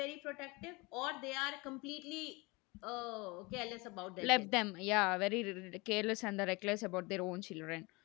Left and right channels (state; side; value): quieter; right; 25.5 dB